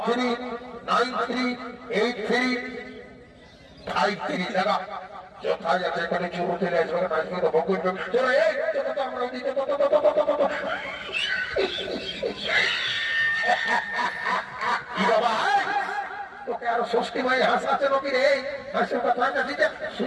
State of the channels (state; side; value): identical; both; correlation 1.00